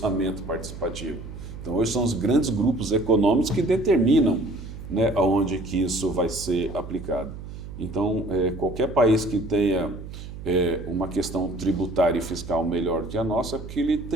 participativo? Então hoje são os grandes grupos econômicos que determinam, né, aonde que isso vai ser aplicado. Então qualquer país que tenha uma questão tributária e fiscal melhor que a nossa, é porque ele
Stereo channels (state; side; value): noise; right; hum, 11 dB below the sound